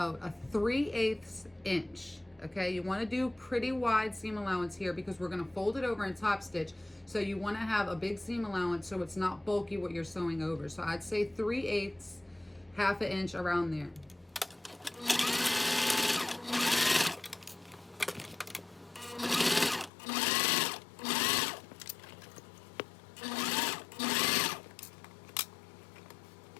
a 3/8 inch. Okay, you want to do pretty wide seam allowance here because we're going to fold it over and top stitch. So you want to have a big seam allowance so it's not bulky what you're sewing over. So I'd say 3/8, 1/2 inch around there.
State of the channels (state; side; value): drops out; right; at 19.9 s